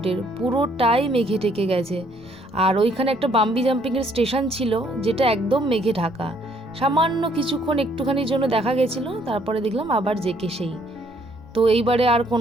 পুরোটাই মেঘে ঢেকে গেছে। আর ওইখানে একটা বাম্বি জাম্পিংয়ের স্টেশন ছিল, যেটা একদম মেঘে ঢাকা। সামান্য কিছুক্ষণ একটুখানির জন্য দেখা গেছিলো, তারপরে দেখলাম আবার জেকে সেই। তো এইবারে আর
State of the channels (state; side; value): normal; both; correlation 0.66